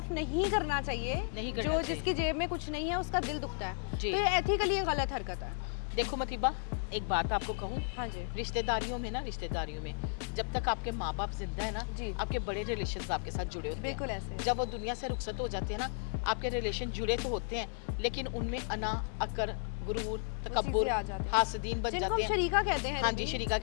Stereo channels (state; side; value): silent; right; digital silence